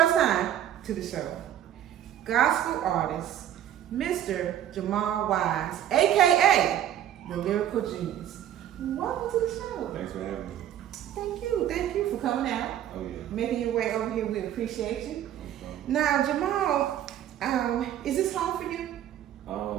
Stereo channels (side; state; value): left; quieter; 11.2 dB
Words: time to the show, gospel artist, Mr. Jamal Wise, a.k.a. the Lyrikal Genius. Welcome to the show. Thanks for having me. Thank you for coming out. Oh yeah. Making your way over here, we appreciate you. No Now, Jamal, is this home for you?